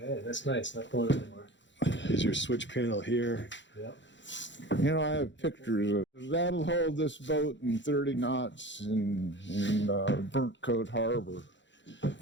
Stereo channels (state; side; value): late; right; 0.53 ms